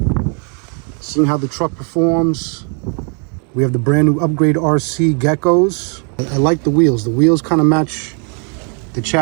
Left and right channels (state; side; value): quieter; left; 39.6 dB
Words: seeing how the truck performs. We have the brand new upgrade RC Geckos. I like the wheels. The wheels kind of match the